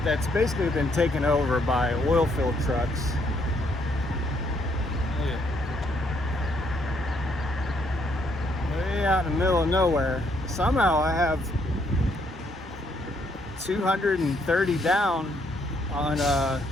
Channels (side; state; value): both; normal; correlation 0.71